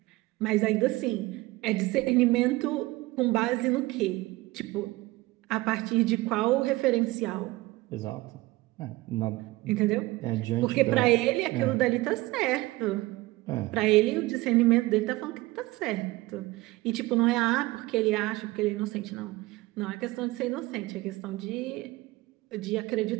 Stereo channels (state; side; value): quieter; left; 20.0 dB